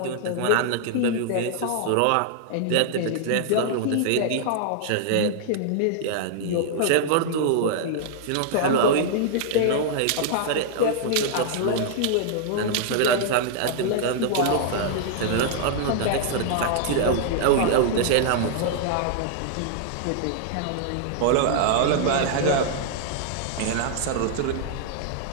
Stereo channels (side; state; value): both; different; correlation -0.01